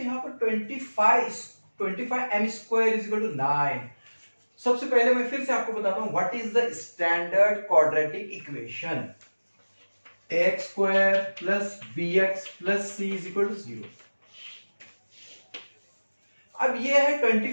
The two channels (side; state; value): both; inverted; correlation -1.00